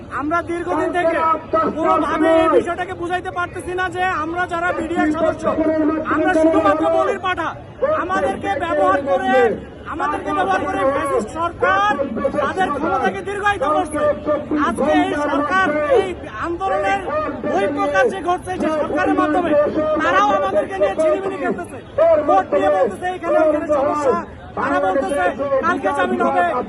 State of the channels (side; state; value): both; identical; correlation 1.00